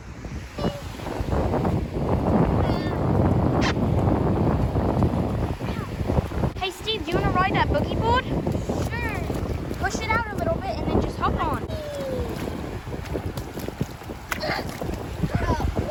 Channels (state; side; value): identical; both; correlation 1.00